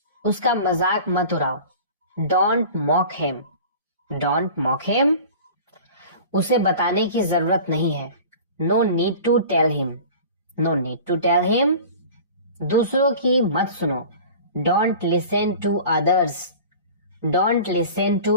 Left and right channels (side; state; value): both; inverted; correlation -0.40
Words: उसका मजाक मत उड़ाओ, don't mock him, don't mock him. उसे बताने की जरूरत नहीं है, no need to tell him, no need to tell him. दूसरों की मत सुनो, don't listen to others, don't listen to